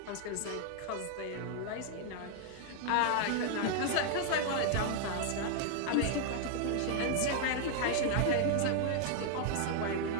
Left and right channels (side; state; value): both; different; correlation 0.00